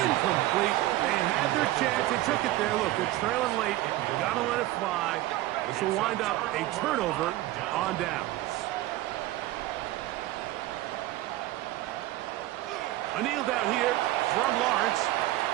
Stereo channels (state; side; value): quieter; left; 16.2 dB